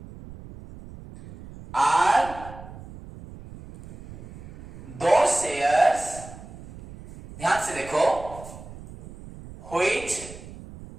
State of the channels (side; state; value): right; noise; rumble, 16 dB below the sound